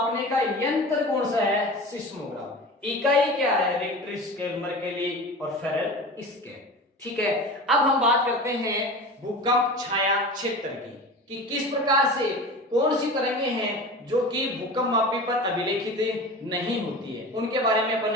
का यंत्र कौन सा है, सिस्मोग्राफ। इकाई क्या है, रिक्टर स्केल, मर्केली और फेरल स्केल, ठीक है। अब हम बात करते हैं भूकंप छाया क्षेत्र की, कि किस प्रकार से कौन सी तरंगे हैं जो कि भूकंप मापी पर अभिलेखित नहीं होती है, उनके बारे में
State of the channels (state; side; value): normal; both; correlation 0.33